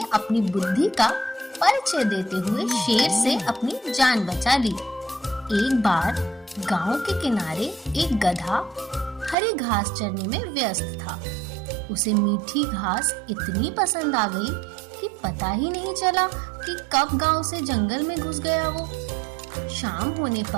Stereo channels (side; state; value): left; drops out; at 9.3 s